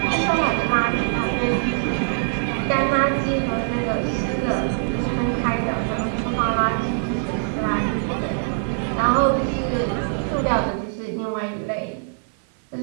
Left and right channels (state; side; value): silent; left; 59 dB below the other